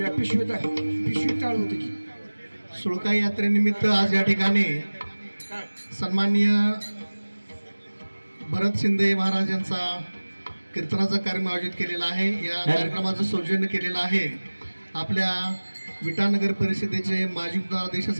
पिशवी टाळ होती की सुळका यात्रेनिमित्त आज या ठिकाणी सन्माननीय भरत शिंदे महाराज यांचा कीर्तनाचा कार्यक्रम आयोजित केलेला आहे। या कार्यक्रमाचं सौजन्य केलेलं आहे आपल्या विटानगर परिषदेचे माजी उपाध्यक्ष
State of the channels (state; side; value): inverted; both; correlation -1.00